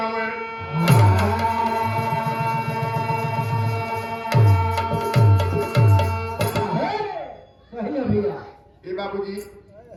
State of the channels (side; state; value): both; identical; correlation 1.00